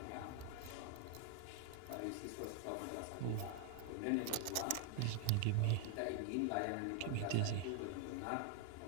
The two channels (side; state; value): both; different; correlation 0.00